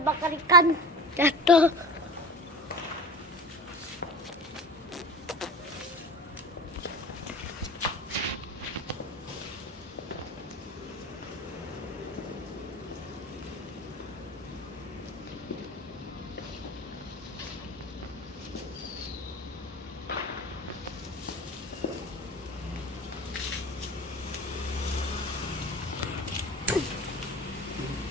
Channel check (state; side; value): normal; both; correlation 0.34